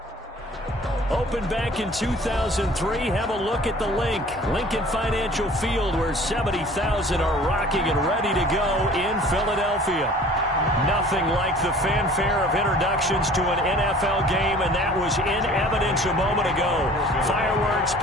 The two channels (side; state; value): both; normal; correlation 0.48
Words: Opened back in 2003. Have a look at the link. Lincoln Financial Field, where 70,000 are rocking and ready to go in Philadelphia. Nothing like the fanfare of introductions to an NFL game, and that was in evidence a moment ago. Fireworks,